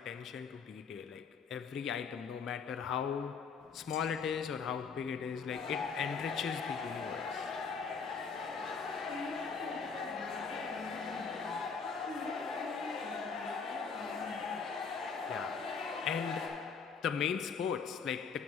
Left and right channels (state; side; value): quieter; right; 5.5 dB